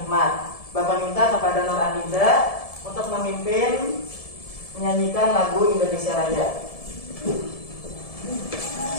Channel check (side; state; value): right; late; 1.7 ms